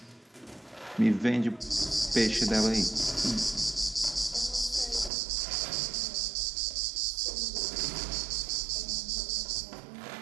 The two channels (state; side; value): drops out; left; at 5.1 s